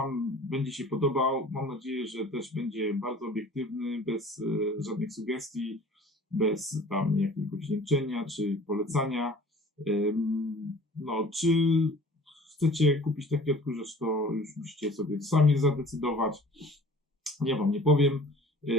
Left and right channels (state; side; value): normal; both; correlation 0.47